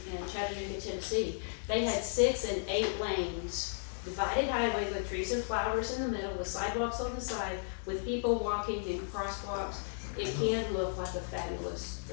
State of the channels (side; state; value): right; silent; digital silence